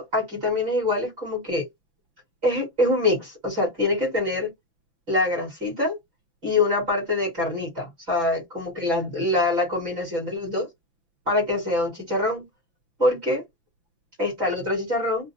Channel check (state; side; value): late; left; 6.0 ms